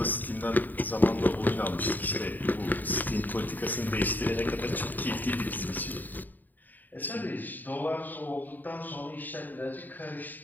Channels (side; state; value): right; late; 0.088 ms